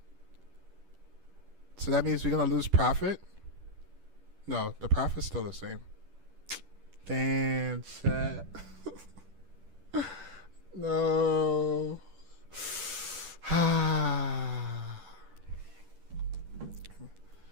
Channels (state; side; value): late; left; 10 ms